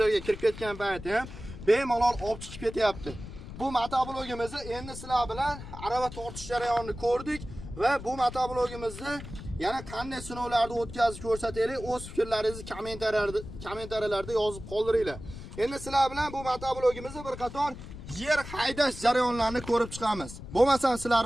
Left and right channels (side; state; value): left; noise; rumble, 12 dB below the sound